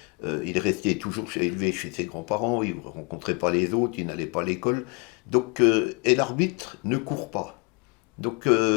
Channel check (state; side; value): quieter; right; 31.0 dB